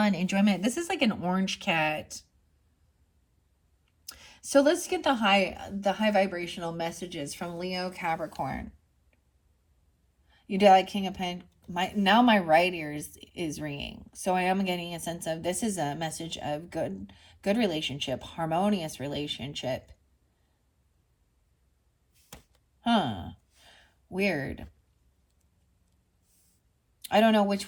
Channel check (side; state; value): both; identical; correlation 1.00